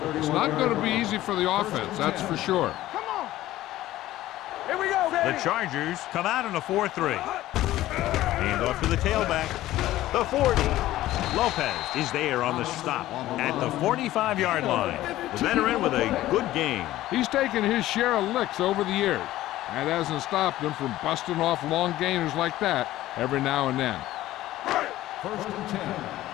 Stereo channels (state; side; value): quieter; right; 15.2 dB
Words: It's not going to be easy for the offense, that's for sure. Come on. Here we go, baby. The Chargers come out in a 4-3. Hand off to the tailback. The 40. Lopez is there on the stop at the 45-yard line. The veteran with a good game. He's taken his share of licks over the years. That hasn't stopped him from busting off long gainers like that every now and then. First and 10.